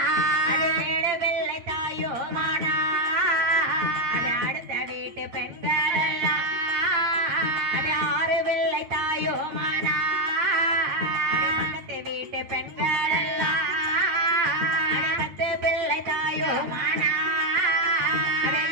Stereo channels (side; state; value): left; late; 8.7 ms